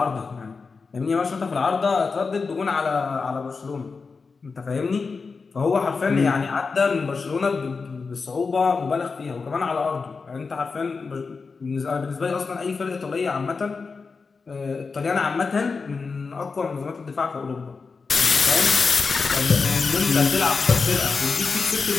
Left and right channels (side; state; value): right; quieter; 4.7 dB